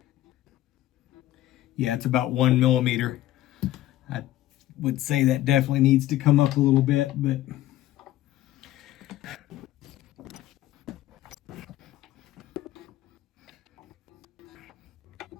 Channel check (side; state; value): right; quieter; 14.6 dB